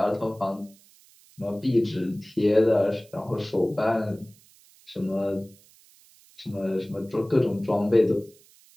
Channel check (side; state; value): right; noise; hiss, 27 dB below the sound